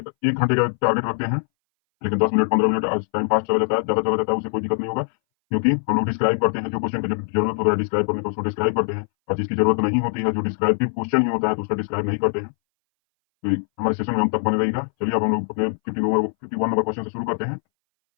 घंटे का टारगेट रखते हैं, लेकिन 10 मिनट 15 मिनट टाइम पास चला जाता है, ज्यादा चला जाता है, उससे कोई दिक्कत नहीं होगा। क्योंकि हम लोग डिस्क्राइब करते हैं, जो क्वेश्चन की जरूरत होता है डिस्क्राइब करने का उसको डिस्क्राइब करते हैं, और जिसकी जरूरत नहीं होती है, जो डिस्क्राइबिव क्वेश्चन ही होता है, तो उसका डिस्क्राइब नहीं करते हैं। तो हमारे सेशन में हम तक बने रहिएगा। चलिए अब हम लोग अपने 51 नंबर क्वेश्चन से शुरू करते हैं।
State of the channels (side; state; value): right; silent; 61 dB below the other